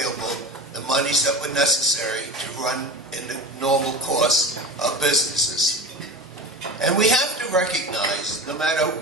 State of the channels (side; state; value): both; normal; correlation 0.31